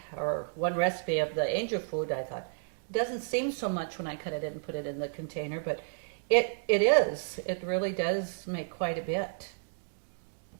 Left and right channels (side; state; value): left; silent; digital silence